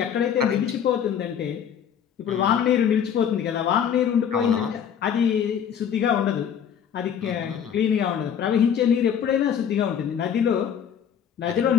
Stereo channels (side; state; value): right; quieter; 8.4 dB